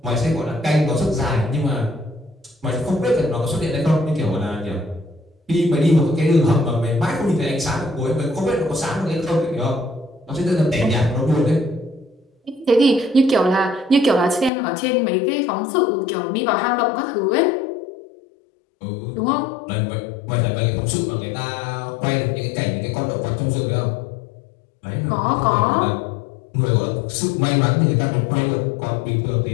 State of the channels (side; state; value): right; drops out; at 14.5 s